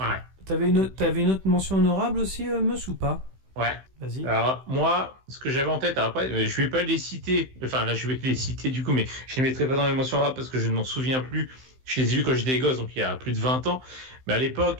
T'avais une autre mention honorable aussi, Mus, ou pas? Ouais. Vas-y. Alors, moi, ce que j'avais en tête, après, je vais pas les citer, enfin, là, je vais les citer du coup, mais je les mettrai pas dans les mentions honorables parce que je ne m'en souviens plus. Je les ai vus quand j'étais gosse, donc il y a plus de 20 ans. Mais à l'époque,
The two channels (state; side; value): late; left; 16 ms